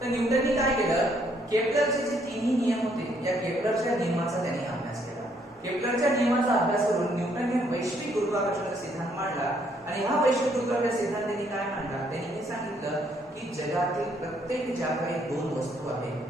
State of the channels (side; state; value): both; normal; correlation 0.69